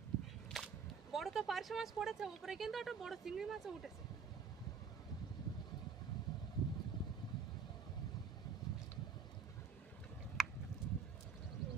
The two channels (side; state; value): left; quieter; 6.2 dB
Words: বড় তো পার্শে মাছ পড়েছে, উপরে কিন্তু একটা বড় চিংড়ি মাছও উঠেছে।